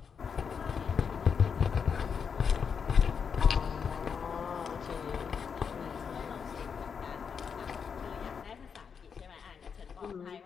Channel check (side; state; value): right; quieter; 6.5 dB